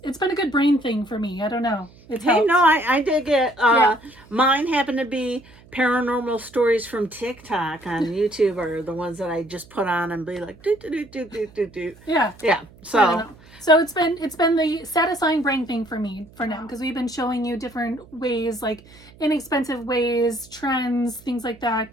it's been a good brain thing for me. I don't know. I dig it. Yeah. Mine happen to be paranormal stories from TikTok on YouTube, or the ones that I just put on and be like, do. Yeah. Yeah. So it's been the satisfying brain thing for me for now, because we've been showing you different ways, like inexpensive ways, trends, things like that.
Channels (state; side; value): noise; right; hum, 24 dB below the sound